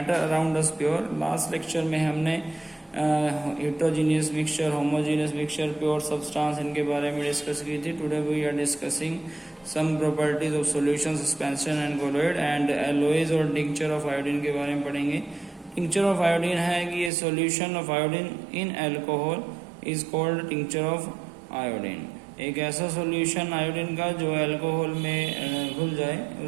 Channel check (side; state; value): left; drops out; at 17.1 s